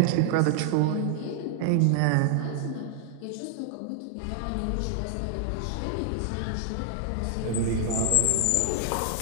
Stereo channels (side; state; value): both; different; correlation 0.00